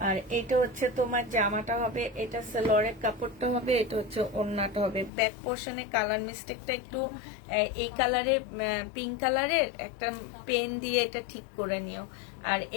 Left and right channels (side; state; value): right; drops out; at 5.1 s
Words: আর এটা হচ্ছে তোমার জামাটা হবে, এটা সালোয়ারের কাপড়টা হবে, এটা হচ্ছে ওড়নাটা হবে। ব্যাক পোর্শনে কালার মিস্টেকটা একটু এই কালারের, পিঙ্ক কালারের একটা পেন দিয়ে এটা ঠিক করে নিও। আর